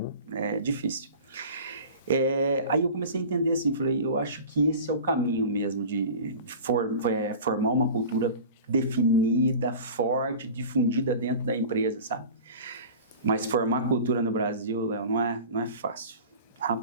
É difícil. Aí eu comecei a entender assim, falei, eu acho que esse é o caminho mesmo de formar uma cultura definida, forte, difundida dentro da empresa, sabe? Mas formar cultura no Brasil, Léo, não é fácil.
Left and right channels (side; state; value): both; inverted; correlation -0.38